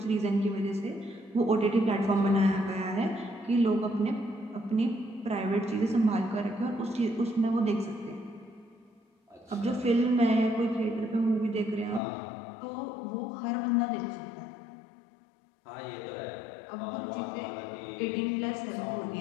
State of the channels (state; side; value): drops out; right; at 12.0 s